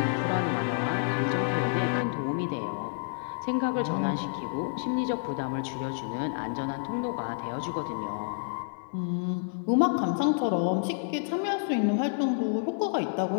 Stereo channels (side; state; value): right; silent; digital silence